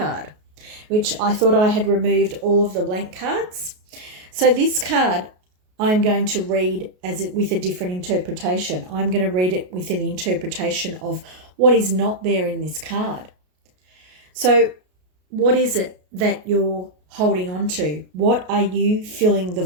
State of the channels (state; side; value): late; left; 33 ms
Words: which I thought I had removed all of the blank cards. So this card I'm going to read with a different interpretation. I'm going to read it with an interpretation of what is not there in this card. So what is it that you're holding on to? What are you filling the